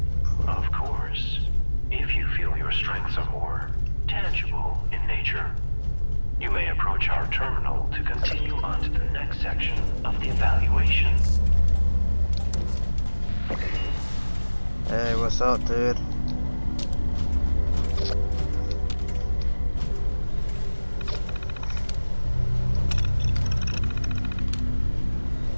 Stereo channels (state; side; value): inverted; both; correlation -1.00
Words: Of course, if you feel your strengths are more tangible in nature, you may approach our terminal to continue on to the next section of the evaluation. Hey, what's up, dude?